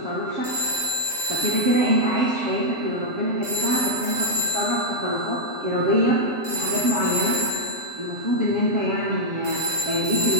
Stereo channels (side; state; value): left; late; 7.6 ms